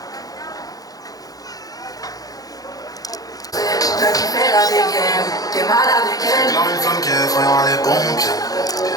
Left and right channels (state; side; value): late; right; 0.18 ms